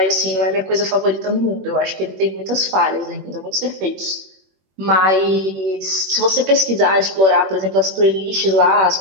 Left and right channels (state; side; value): late; left; 21 ms